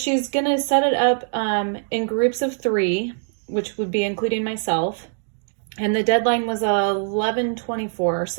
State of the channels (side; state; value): left; silent; digital silence